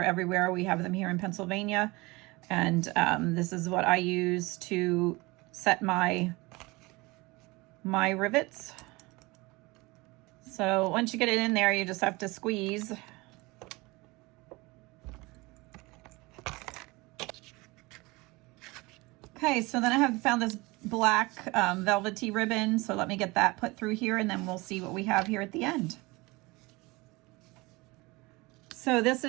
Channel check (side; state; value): left; quieter; 23.4 dB